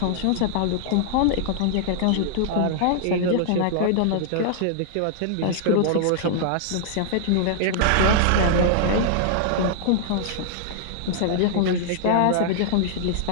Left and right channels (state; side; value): different; both; correlation -0.01